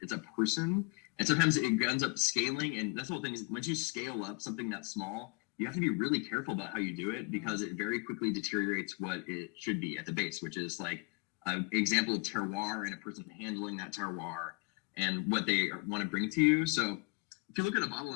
it's a person. And sometimes it ends up scaling, and that's the whole thing is once you scale up something that small, you have to be really careful about how you do it, because it very quickly deteriorates what it should be at the base, which is like an example of terroir and a person handling that terroir and what they want to bring to you. So if you look at a bottle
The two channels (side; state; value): right; quieter; 31.4 dB